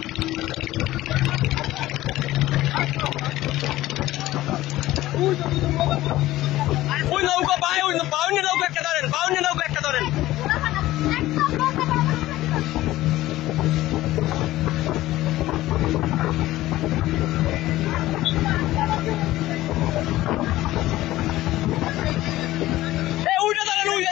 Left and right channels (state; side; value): quieter; right; 16.1 dB